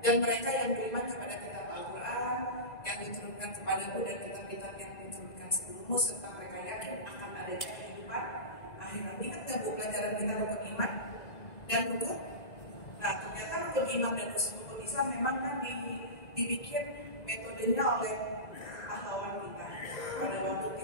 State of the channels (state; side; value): late; right; 2.0 ms